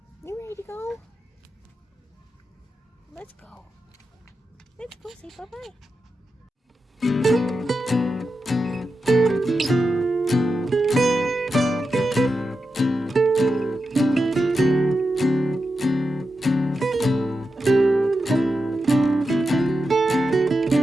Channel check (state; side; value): normal; both; correlation 0.89